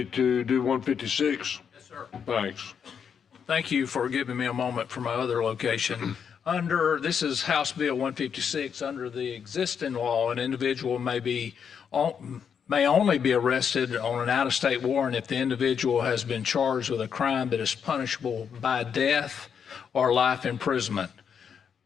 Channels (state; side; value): quieter; right; 7.2 dB